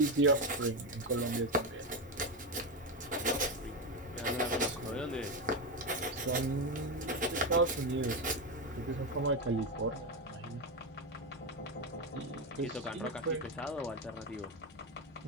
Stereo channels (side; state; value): both; normal; correlation 0.12